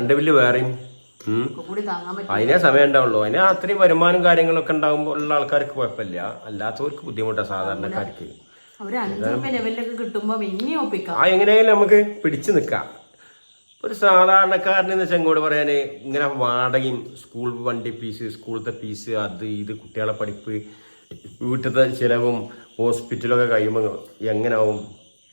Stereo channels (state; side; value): inverted; both; correlation -1.00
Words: ബില്ല് വേറെയും അതിനെ സമയം ഉണ്ടാവുള്ളൂ. അതിന് അത്രയും വരുമാനം കാര്യങ്ങളൊക്കെ ഉണ്ടാകുമ്പോൾ ഉള്ള ആൾക്കാർക്ക് കുഴപ്പമില്ല. അല്ലാത്തവർക്ക് ബുദ്ധിമുട്ടാണ് സാധാരണക്കാർക്ക്. എങ്ങനെയായാലും നമുക്ക് പിടിച്ചു നിൽക്കാം. ഒരു സാധാരണക്കാരനെന്ന് വെച്ചാൽ ഇങ്ങോട്ട് പറയാന് ഇങ്ങനെ വാടകയും സ്കൂൾ വണ്ടി ഫീസ്, സ്കൂളത്തെ ഫീസ്, അത് ഇത് കുട്ടികളെ പഠിപ്പ്, വീട്ടിലത്തെ ചിലവും ഹോസ്പിറ്റലൊക്കെ കഴിയുമ്പോൾ എങ്ങനെയാവും